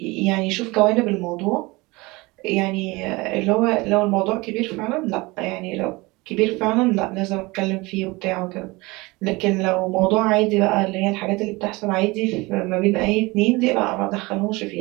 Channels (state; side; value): quieter; left; 23.2 dB